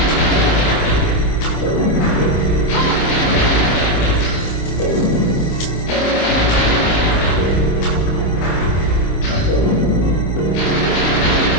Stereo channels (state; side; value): late; right; 26 ms